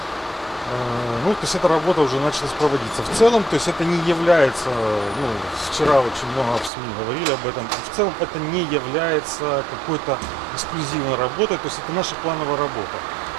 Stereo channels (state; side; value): drops out; left; at 6.7 s